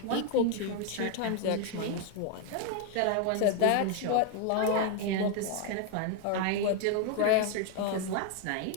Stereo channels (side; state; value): both; different; correlation 0.01